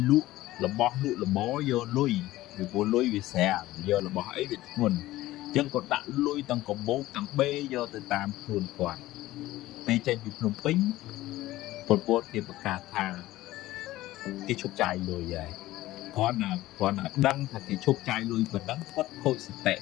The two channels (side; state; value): right; quieter; 16.5 dB